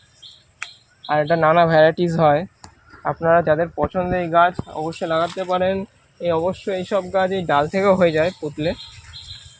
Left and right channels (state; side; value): identical; both; correlation 1.00